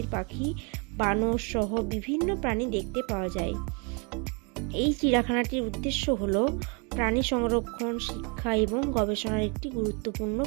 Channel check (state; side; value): quieter; left; 33.8 dB